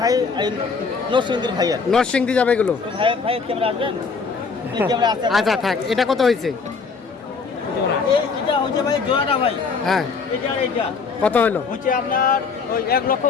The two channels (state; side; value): quieter; right; 5.0 dB